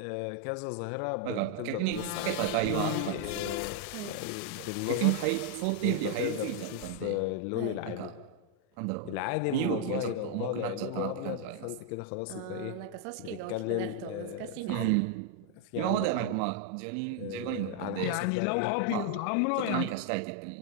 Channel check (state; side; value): different; both; correlation 0.00